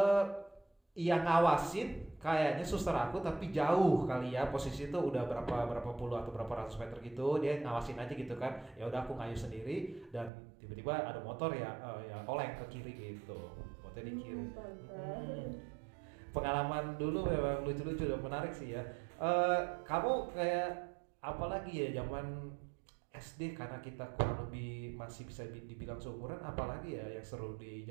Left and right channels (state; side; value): drops out; left; at 10.3 s